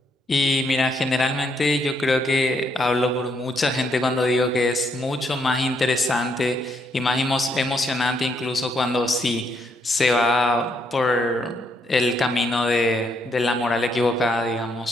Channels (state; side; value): normal; both; correlation 0.74